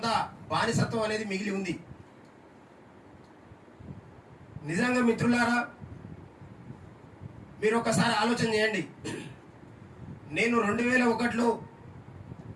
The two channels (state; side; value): identical; both; correlation 1.00